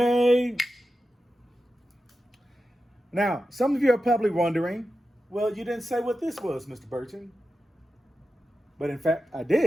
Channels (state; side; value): normal; both; correlation 0.91